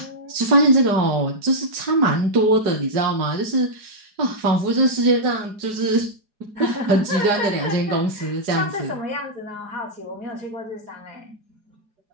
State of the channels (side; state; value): left; late; 4.8 ms